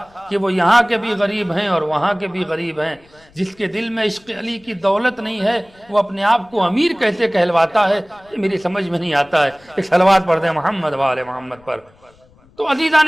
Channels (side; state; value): left; noise; rumble, 29 dB below the sound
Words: کہ وہ یہاں کے بھی غریب ہیں اور وہاں کے بھی غریب ہیں۔ جس کے دل میں عشق علی کی دولت نہیں ہے وہ اپنے آپ کو امیر کیسے کہلواتا ہے، یہ میری سمجھ میں نہیں آتا ہے۔ ایک صلوات پڑھ دیں محمد و آل محمد پر۔ تو عزیزان